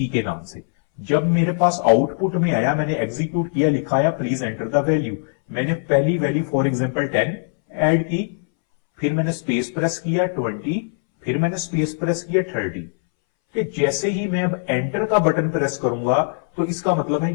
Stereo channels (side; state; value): right; silent; 63 dB below the other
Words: के नाम से। जब मेरे पास आउटपुट में आया, मैंने एग्जीक्यूट किया, लिखाया प्लीज एंटर द वैल्यू, मैंने पहली वैल्यू फॉर एग्जांपल 10 ऐड की, फिर मैंने स्पेस प्रेस किया 20, फिर मैंने स्पेस प्रेस किया 30। कि जैसे ही मैं अब एंटर का बटन प्रेस करूंगा तो इसका मतलब है